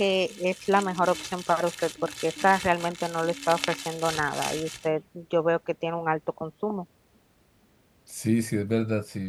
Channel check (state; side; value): identical; both; correlation 1.00